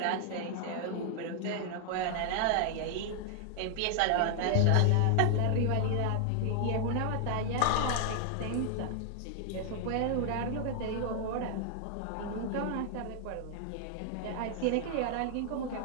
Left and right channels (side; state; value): both; different; correlation 0.00